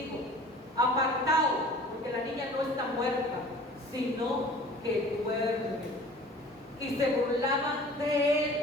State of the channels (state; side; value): normal; both; correlation 0.46